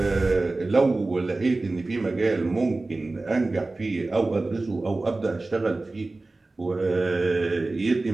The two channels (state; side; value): quieter; left; 3.2 dB